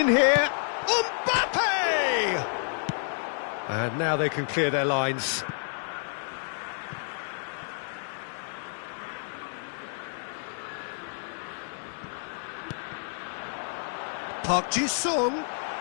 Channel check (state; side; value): silent; right; digital silence